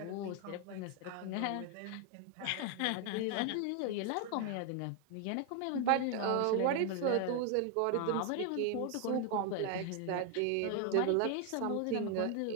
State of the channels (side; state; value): both; different; correlation 0.01